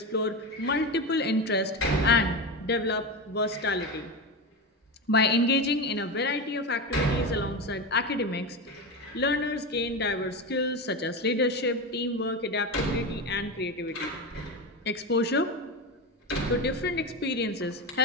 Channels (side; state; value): both; normal; correlation 0.20